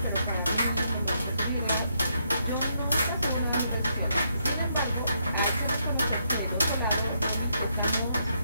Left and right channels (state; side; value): inverted; both; correlation -0.77